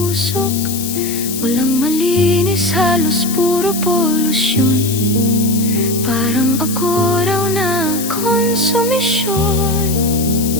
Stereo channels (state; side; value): noise; left; hiss, 7 dB below the sound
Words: Walang malinis, halos puro polusyon. Parang ako raw na konsumisyon.